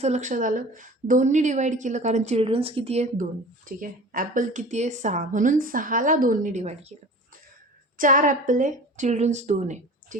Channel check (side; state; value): both; normal; correlation 0.40